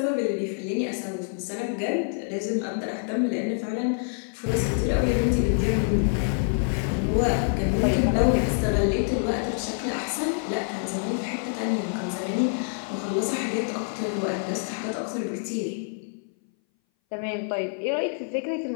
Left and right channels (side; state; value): right; silent; 59 dB below the other